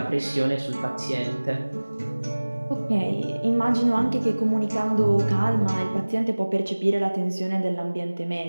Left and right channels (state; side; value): inverted; both; correlation -1.00